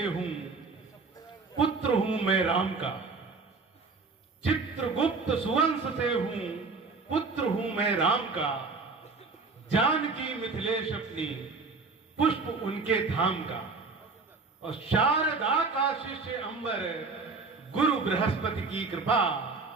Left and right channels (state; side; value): quieter; left; 4.2 dB